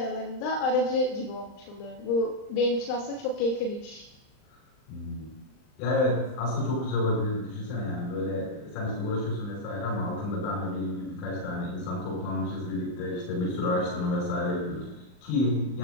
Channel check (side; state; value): right; late; 39 ms